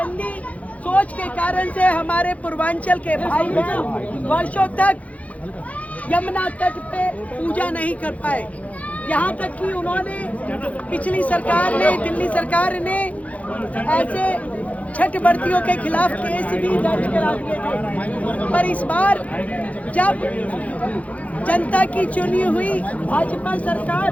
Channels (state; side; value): late; right; 0.068 ms